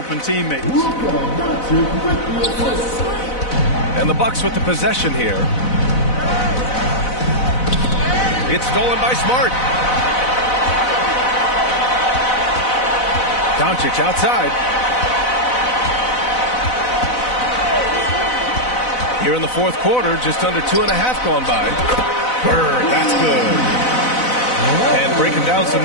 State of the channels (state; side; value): late; right; 4.0 ms